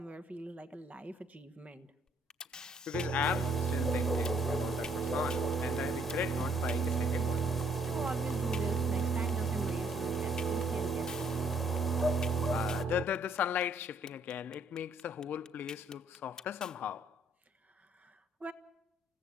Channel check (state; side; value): normal; both; correlation 0.65